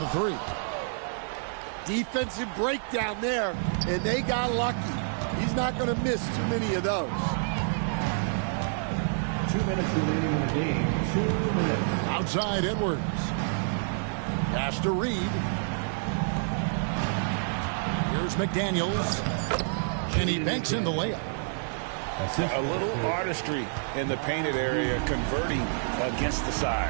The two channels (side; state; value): left; silent; digital silence